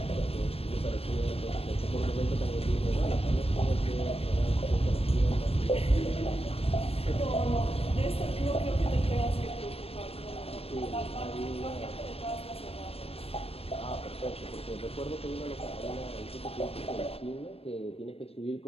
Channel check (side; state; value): right; late; 0.28 ms